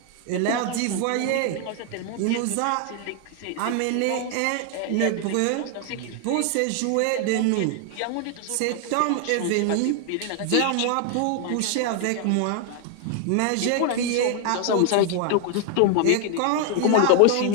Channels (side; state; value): both; different; correlation 0.00